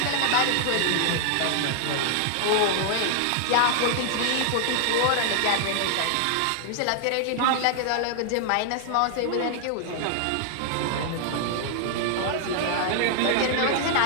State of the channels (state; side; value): different; both; correlation 0.00